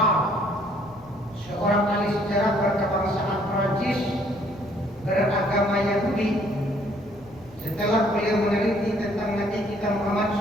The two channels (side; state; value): left; noise; rumble, 25 dB below the sound